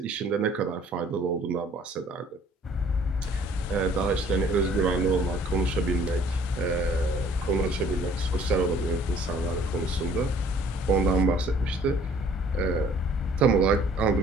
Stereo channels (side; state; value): both; normal; correlation 0.56